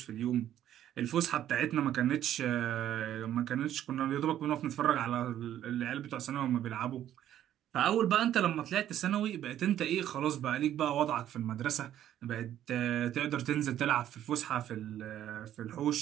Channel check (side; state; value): left; quieter; 11.5 dB